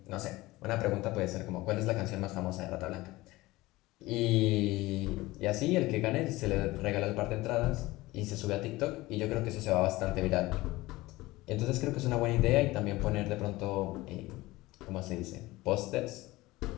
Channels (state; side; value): quieter; right; 19.5 dB